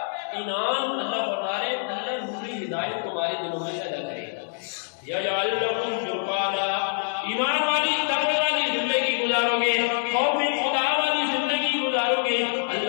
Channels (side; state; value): right; silent; digital silence